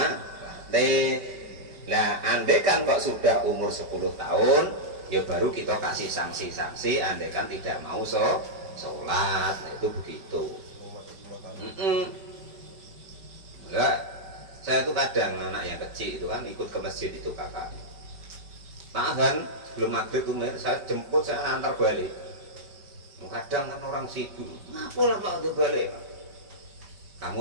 Nah andaikan kok sudah umur 10 tahun, ya baru kita kasih sanksi-sanksi andaikan tidak mau sholat. Nah itu begitu. Enggak, saya tuh kadang anak yang kecil itu kan ikut ke masjid itu kakaknya. Tahan sebelum maghrib tuh saya jemput, saya antar balik. Kadang kan orang sibuk, ngapalah Pak udah balik Pak?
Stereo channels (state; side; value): late; left; 5.1 ms